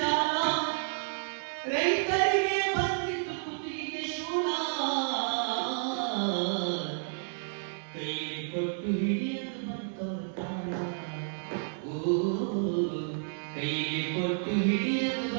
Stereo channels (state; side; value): silent; left; 57 dB below the other